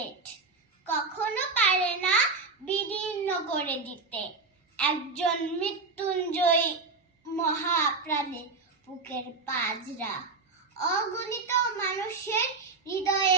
কখনো পারে না বিদীর্ণ করে দিতে একজন মৃত্যুঞ্জয়ী মহাপ্রাণের বুকের পাজরা। অগণিত মানুষের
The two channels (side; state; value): left; quieter; 4.1 dB